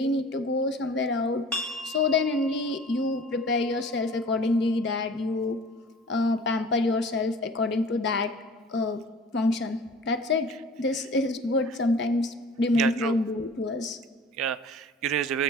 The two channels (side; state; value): both; normal; correlation 0.44